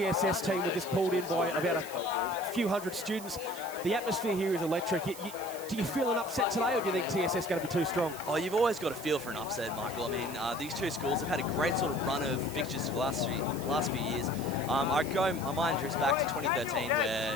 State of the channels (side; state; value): right; noise; hiss, 14 dB below the sound